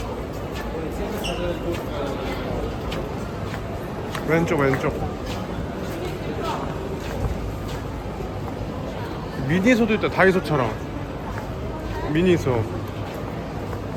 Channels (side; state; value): both; identical; correlation 1.00